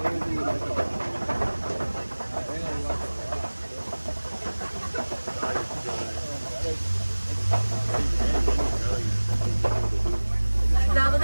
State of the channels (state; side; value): inverted; both; correlation -1.00